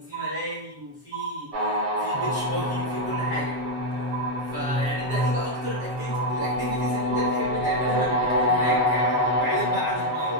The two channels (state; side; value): late; left; 7.5 ms